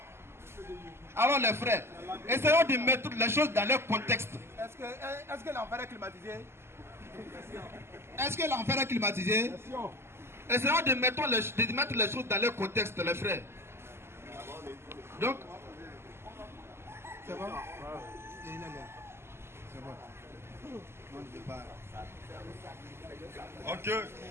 Alors les frères, essayons de mettre les choses dans leur contexte. Est-ce que l'enfer est climatisé? Est-ce que l'enfer est climatisé? Essayons de mettre les choses dans leur contexte, les frères. Donc, c'est bon? C'est bon. Ok.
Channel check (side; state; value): left; late; 0.12 ms